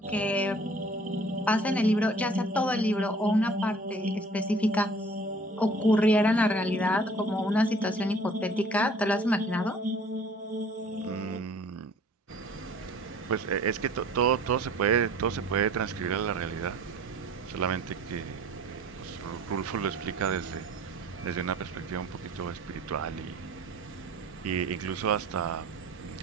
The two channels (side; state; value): both; normal; correlation 0.51